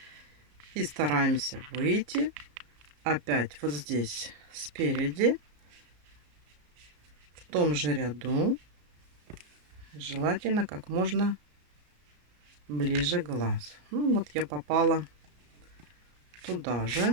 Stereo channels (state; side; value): late; left; 33 ms